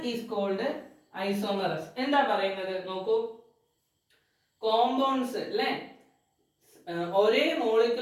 is called isomers. എന്താ പറയുന്നത് നോക്കൂ, കോമ്പൗണ്ട്സ് അല്ലേ, ഒരേ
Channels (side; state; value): both; identical; correlation 1.00